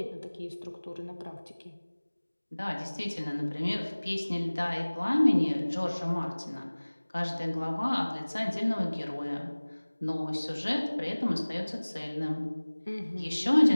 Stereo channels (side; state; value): both; inverted; correlation -1.00